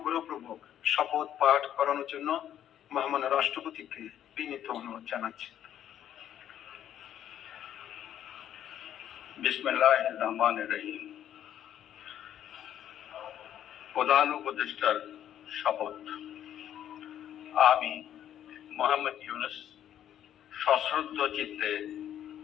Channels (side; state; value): right; quieter; 10.7 dB